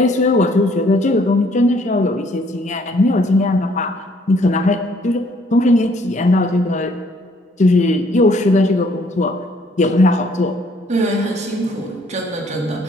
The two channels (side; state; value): both; normal; correlation 0.63